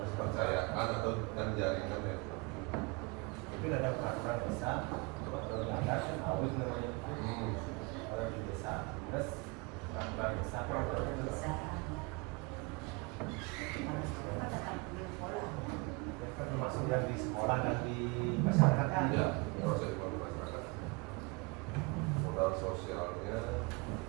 Percayaan atau dengan jaringan ya. Mungkin ada peraturan desa, kalau nggak ada kan harus namanya. Kalau di desa, terus peraturan desa kalau Bisa. kan termasuk yang di sekolah dan di masyarakat kan. Ya, proses ekonomi masyarakat. Modal sosialnya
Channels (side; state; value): left; quieter; 27.6 dB